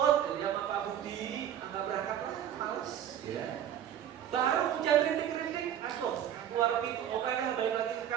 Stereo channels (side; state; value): left; quieter; 10.2 dB